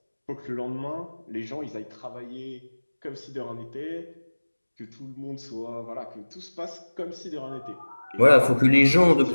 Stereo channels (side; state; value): both; inverted; correlation -1.00